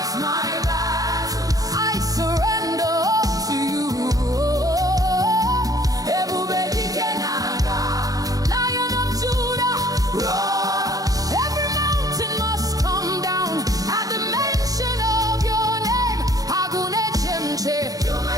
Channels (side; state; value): left; late; 0.17 ms